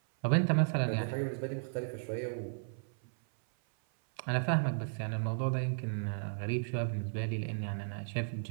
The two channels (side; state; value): left; silent; 55 dB below the other